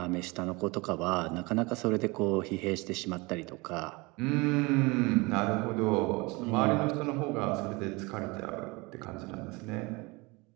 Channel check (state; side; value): quieter; left; 25.3 dB